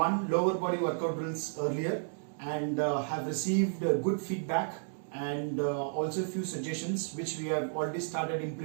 lower body workout drills earlier and have received good feedback and also a few suggestions which we have already started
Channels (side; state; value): left; silent; digital silence